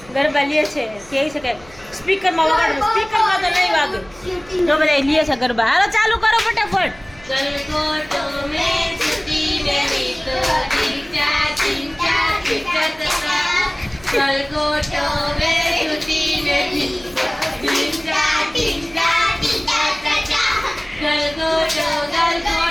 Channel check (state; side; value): noise; right; hum, 24 dB below the sound